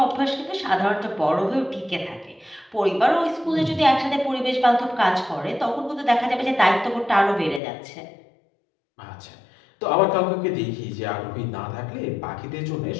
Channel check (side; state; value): right; drops out; at 7.6 s